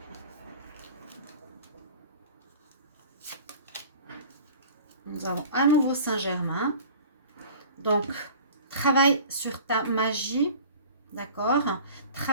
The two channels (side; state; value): both; inverted; correlation -0.43